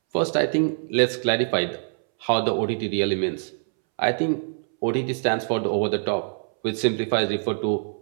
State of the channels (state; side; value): silent; left; 62 dB below the other